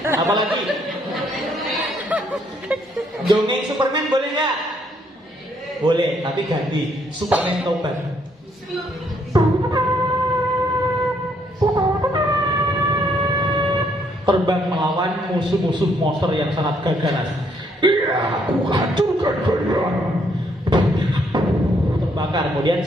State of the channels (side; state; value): both; normal; correlation 0.70